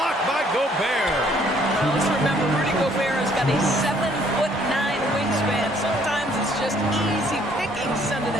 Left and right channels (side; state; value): both; normal; correlation 0.63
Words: by Gobert. Let's remember, Rudy Gobert has got a 7'9" wingspan. Sometimes it's just easy picking sending